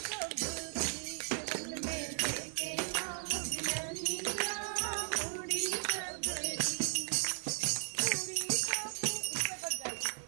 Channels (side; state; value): left; silent; 54 dB below the other